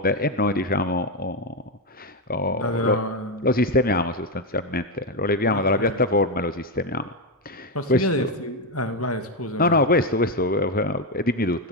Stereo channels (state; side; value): normal; both; correlation 0.07